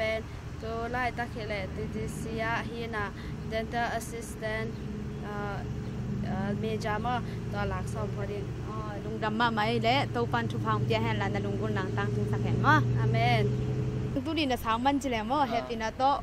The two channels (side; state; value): both; identical; correlation 1.00